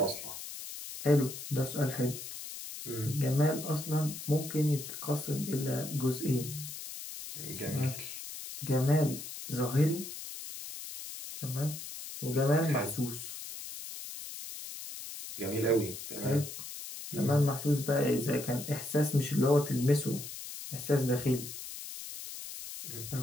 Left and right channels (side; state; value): left; noise; hiss, 10 dB below the sound